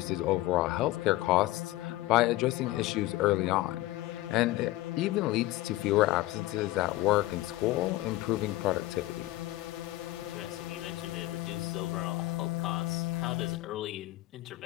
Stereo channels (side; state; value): right; quieter; 17.5 dB